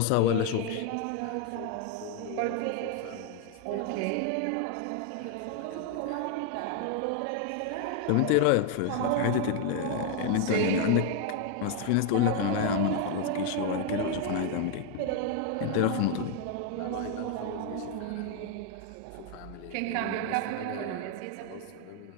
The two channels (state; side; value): different; both; correlation 0.01